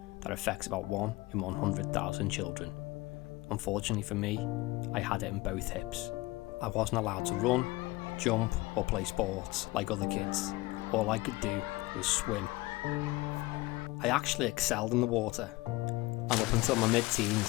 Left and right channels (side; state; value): right; quieter; 20.8 dB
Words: that affects about 1 in 100,000 children. Unfortunately for me, I had it in both hips. I wasn't allowed to run, jump or play sports like other kids. All I could do was swim. I actually excelled in the water, and up until my